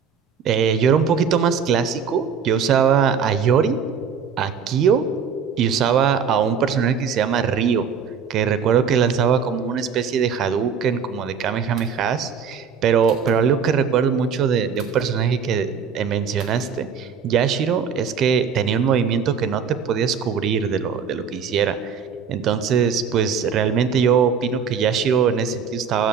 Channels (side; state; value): left; quieter; 6.5 dB